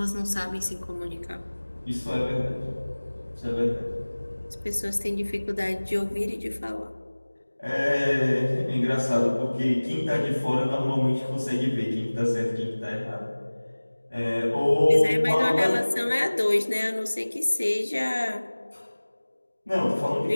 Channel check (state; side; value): inverted; both; correlation -1.00